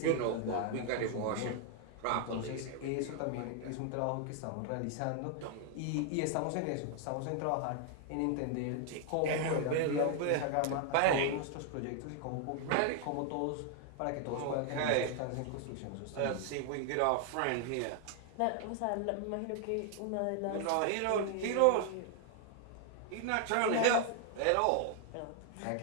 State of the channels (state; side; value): different; both; correlation 0.00